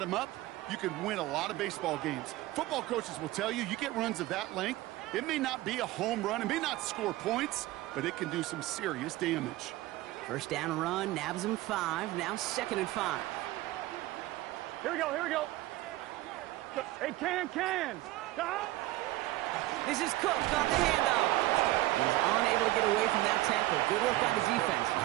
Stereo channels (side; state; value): left; quieter; 17.4 dB